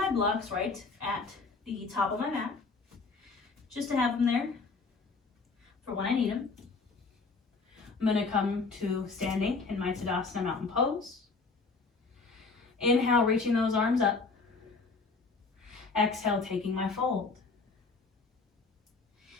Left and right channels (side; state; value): right; quieter; 4.2 dB